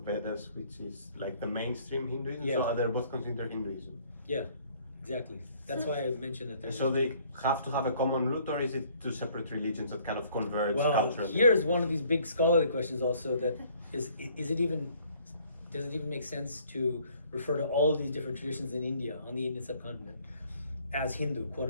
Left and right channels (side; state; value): both; inverted; correlation -0.60